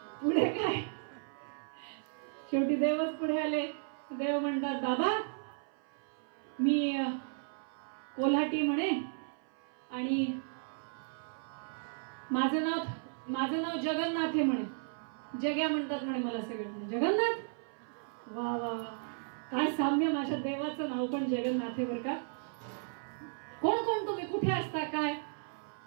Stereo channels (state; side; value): silent; left; 55 dB below the other